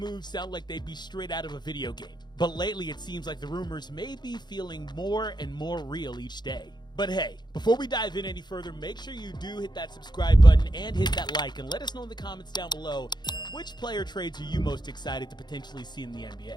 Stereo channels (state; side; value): late; right; 0.21 ms